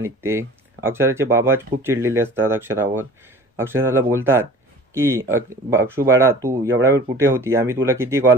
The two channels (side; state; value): both; normal; correlation 0.43